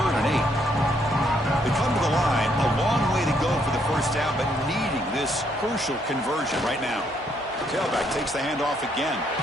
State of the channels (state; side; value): normal; both; correlation 0.72